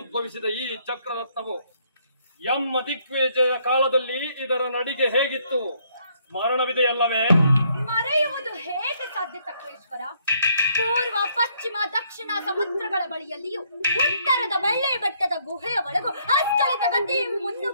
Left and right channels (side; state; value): both; inverted; correlation -0.69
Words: ಈ ಚಕ್ರರತ್ನವು ಎಮ್ಮ ದಿಗ್ವಿಜಯ ಕಾಲದಲ್ಲಿ ಇದರ ನಡಿಗೆ ಹೇಗಿತ್ತು ಸ್ಮರಣವಿದೆಯಲ್ಲವೇ? ಮರೆಯುವುದು ಹೇಗೆ ಸಾಧ್ಯ ಚಕ್ರೇಶ್ವರ? ಪೂರ್ವ, ಪಶ್ಚಿಮ, ದಕ್ಷಿಣ ಸಮುದ್ರಗಳ ಬಳಿಯಲ್ಲಿಯೂ ಉತ್ತರದ ಬೆಳ್ಳಿ ಬೆಟ್ಟದ ಗುಹೆಯ ಒಳಗೂ ಅಸ್ಖಲಿತ ಗತಿ